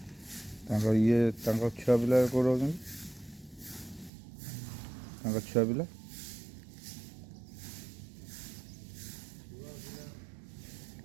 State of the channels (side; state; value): left; drops out; at 4.1 s